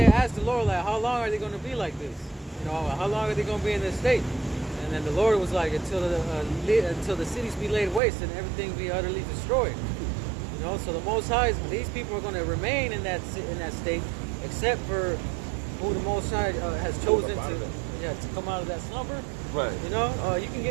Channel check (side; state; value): left; drops out; at 8.0 s